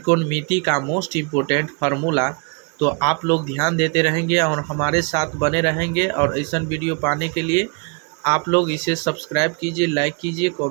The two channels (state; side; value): quieter; left; 33.4 dB